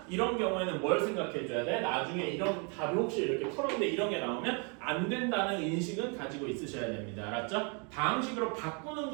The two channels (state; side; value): quieter; left; 35.3 dB